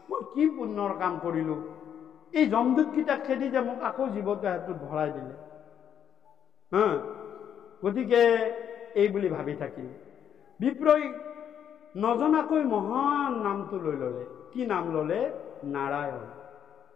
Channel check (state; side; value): quieter; right; 9.0 dB